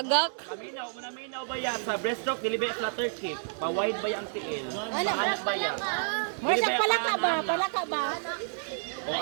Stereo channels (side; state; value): left; silent; digital silence